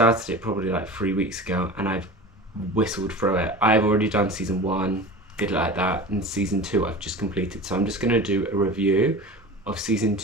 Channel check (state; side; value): normal; both; correlation 0.34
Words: it probably like 3 weeks ago, and I've whistled through it. I've already done season 1, did it like that, and season 2 I've just completed. So I'm just going to do a review of season